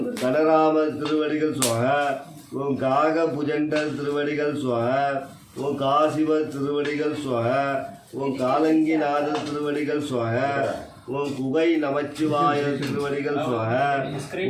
கனராமர் திருவடிகள் சுவாகா. ஓம் காக புஜண்டர் திருவடிகள் சுவாகா. ஓம் காசிவர் திருவடிகள் சுவாகா. ஓம் காலங்கிநாதர் திருவடிகள் சுவாகா. ஓம் குகை நமச்சிவாய திருவடிகள் சுவாகா.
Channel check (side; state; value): both; identical; correlation 1.00